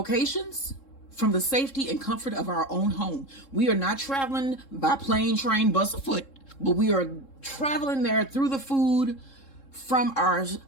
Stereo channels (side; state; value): right; late; 3.7 ms